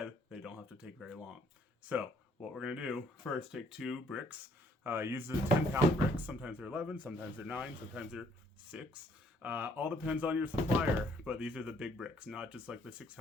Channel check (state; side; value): normal; both; correlation 0.65